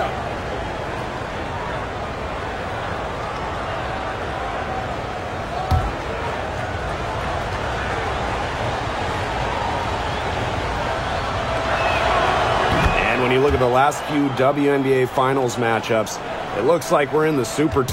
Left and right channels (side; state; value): both; identical; correlation 1.00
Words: And when you look at the last few WNBA Finals matchups, it looks like we're in the super